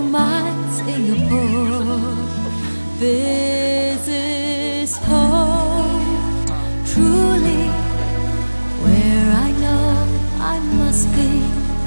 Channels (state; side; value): inverted; both; correlation -1.00